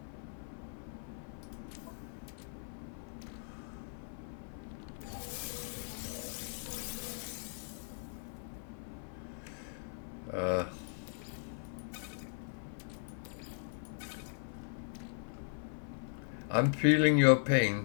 I'm feeling your pain,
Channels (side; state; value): right; silent; 52 dB below the other